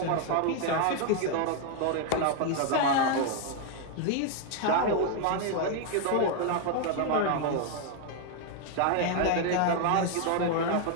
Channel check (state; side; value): different; both; correlation 0.00